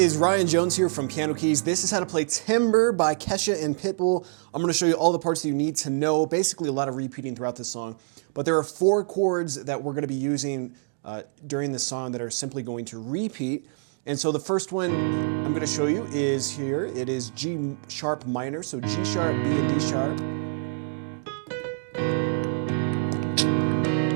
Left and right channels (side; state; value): left; silent; digital silence